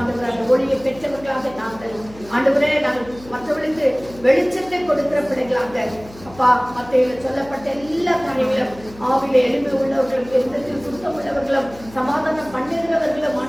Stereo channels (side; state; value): left; noise; hum, 20 dB below the sound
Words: அந்த ஒளியை பெற்றவர்களாக நாங்கள் ஆண்டவரே, நாங்கள் மற்றவர்களுக்கு வெளிச்சத்தை கொடுக்கிற பிள்ளைகளாக அப்பா, மத்தியில சொல்லப்பட்ட எல்லா காரியங்களும் ஆவில எளிமை உள்ளவர்களும், எந்தத்தில் சுத்தம் உள்ளவர்களும், சமாதானம் பண்ணுகிறவர்களும்